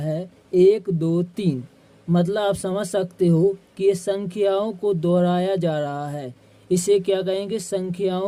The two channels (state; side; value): identical; both; correlation 1.00